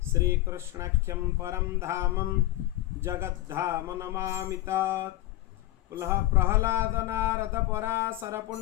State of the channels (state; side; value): quieter; right; 16.2 dB